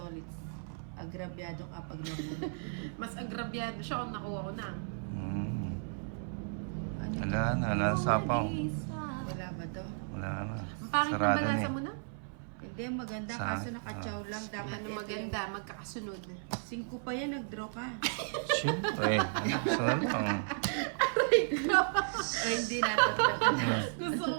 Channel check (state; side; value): silent; left; 55 dB below the other